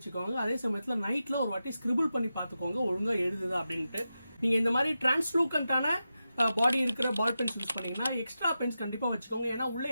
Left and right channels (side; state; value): both; inverted; correlation -0.91